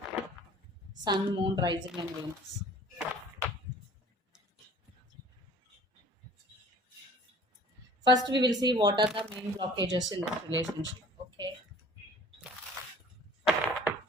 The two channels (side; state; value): both; normal; correlation 0.49